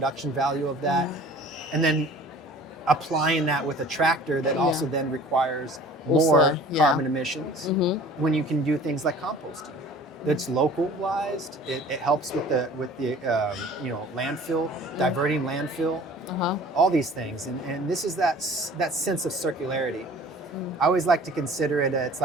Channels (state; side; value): normal; both; correlation 0.47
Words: value of that, and then applying that with a tractor that also then requires more carbon emissions when you can do things like composting. That's localized. It helps with the landfill, diverting landfill, all these things. And this is that sense of circularity. I always like to consider it, it's